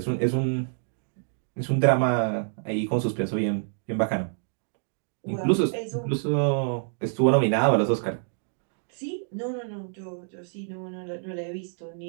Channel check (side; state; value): left; silent; digital silence